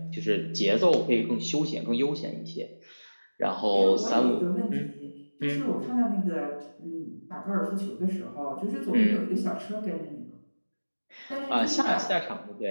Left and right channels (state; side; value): inverted; both; correlation -1.00